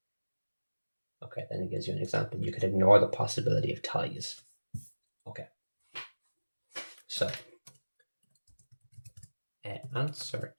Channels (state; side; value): inverted; both; correlation -1.00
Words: Okay, then it gives you an example. You could ignore the possibility of ties. Okay, so answer